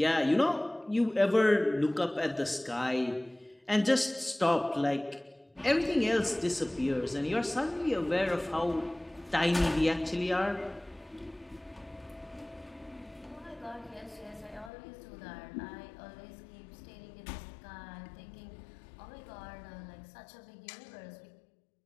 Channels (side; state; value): right; drops out; at 14.7 s